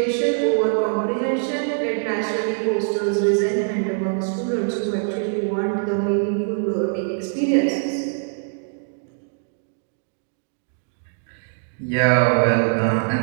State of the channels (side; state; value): left; silent; digital silence